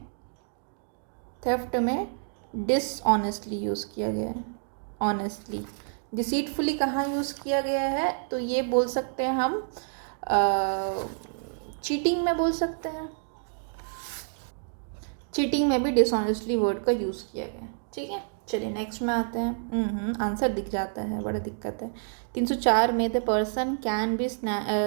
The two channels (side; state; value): left; silent; digital silence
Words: में डिसऑनेस्टली यूज़ किया गया है, ऑनेस्टली। डिसीटफुली कहाँ यूज़ किया गया है, तो ये बोल सकते हैं हम चीटिंग में बोल सकते हैं, चीटिंग में भी डिसऑनेस्टली वर्ड का यूज़ किया गया, ठीक है। चलिए नेक्स्ट में आते हैं। आंसर दिख जाता है, बड़ा दिक्कत है। 304 में the person can B